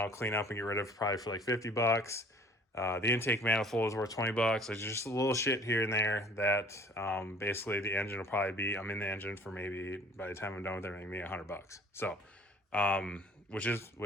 clean up and get rid of probably for like 50 bucks. The intake manifold is worth 20 bucks. There's just a little shit here and there that basically the engine will probably be, I'm in the engine for maybe, by the time I'm done with everything, maybe 100 bucks. So, which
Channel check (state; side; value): normal; both; correlation 0.51